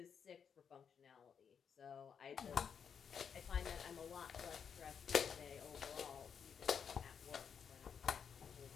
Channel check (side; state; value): right; quieter; 7.1 dB